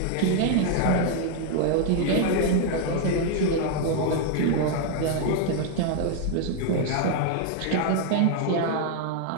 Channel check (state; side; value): different; both; correlation 0.00